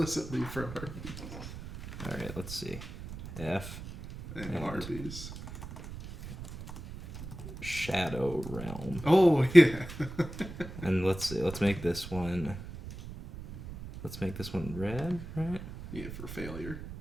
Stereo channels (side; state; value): right; noise; rumble, 11 dB below the sound